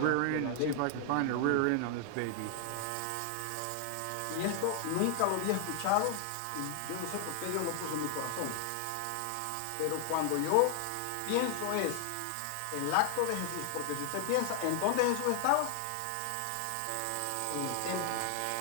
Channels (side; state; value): both; different; correlation 0.00